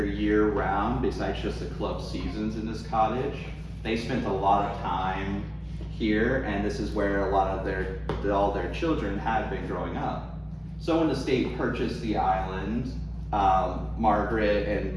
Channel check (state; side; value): identical; both; correlation 1.00